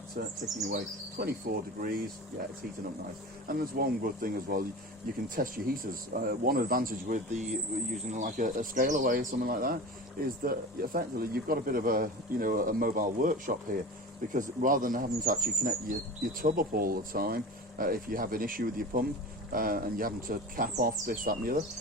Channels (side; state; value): both; normal; correlation 0.33